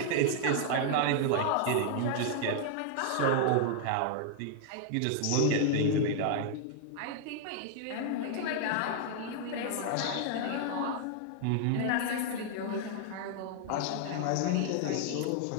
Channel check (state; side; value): different; both; correlation 0.00